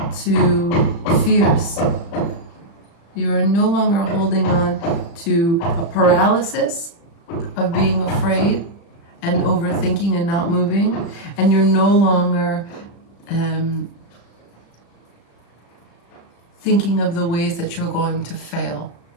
to fears. You are no longer holding on to a paralysis of being afraid and overthinking and not moving. And you're no longer thinking of the ways that you're going to fail.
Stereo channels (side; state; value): right; late; 35 ms